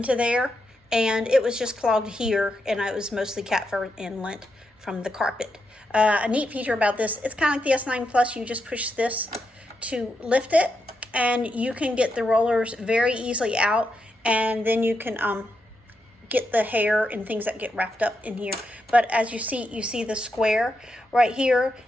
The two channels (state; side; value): normal; both; correlation 0.84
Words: there, and it was just clogged here, and it was mostly cat fur and lint from the carpet. A neat feature about this, it's kind of like the S9 Plus. You just push this to lift it, and you can get the rollers very easily out. And then you can get the hair and things that get wrapped up in here. But as you see the square right here,